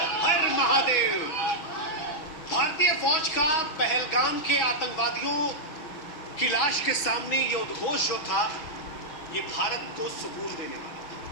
हर महादेव। भारतीय फौज का पहलगाम के आतंकवादियों की लाश के सामने ये उद्घोष जो था, ये भारत को सुकून देने वाला था।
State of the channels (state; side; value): late; right; 6.2 ms